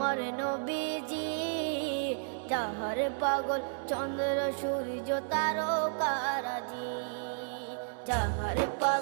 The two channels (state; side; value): silent; left; 56 dB below the other